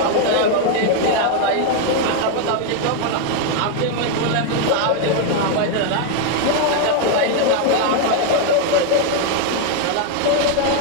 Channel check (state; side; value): different; both; correlation 0.00